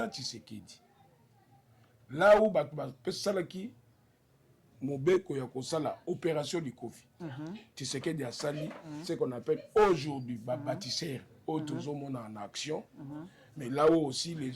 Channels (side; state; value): both; identical; correlation 1.00